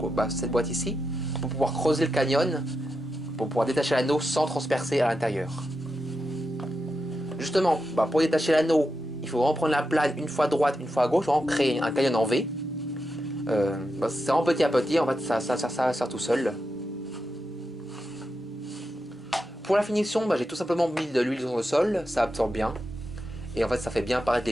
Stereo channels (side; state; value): both; normal; correlation 0.87